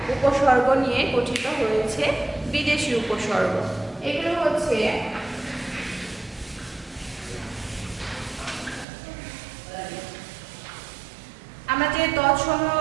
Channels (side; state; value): left; drops out; at 8.8 s